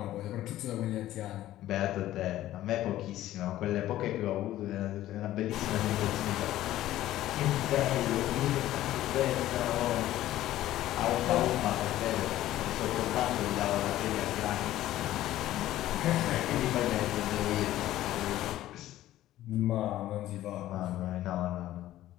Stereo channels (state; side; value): quieter; right; 14.2 dB